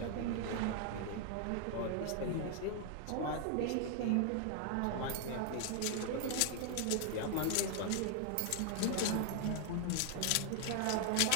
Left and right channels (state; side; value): different; both; correlation 0.00